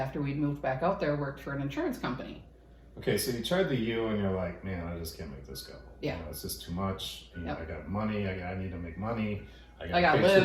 we'd moved back out there, worked for an insurance company. Okay, so you tried the U and you're like, man, I just can't make this go. Yeah. You know, it's just too much. You know, Yep. I got money. I need to make money. I gotta pay live.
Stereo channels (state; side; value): identical; both; correlation 1.00